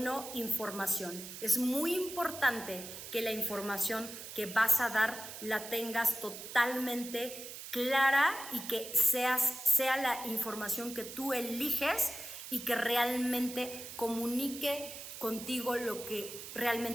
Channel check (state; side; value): noise; right; hiss, 11 dB below the sound